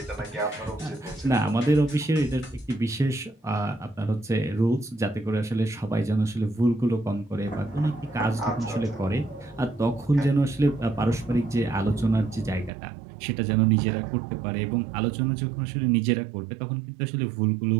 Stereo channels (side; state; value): left; drops out; at 12.7 s